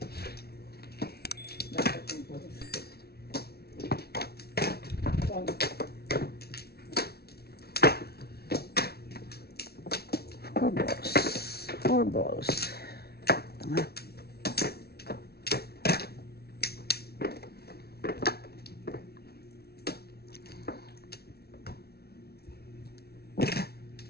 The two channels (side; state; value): right; late; 0.45 ms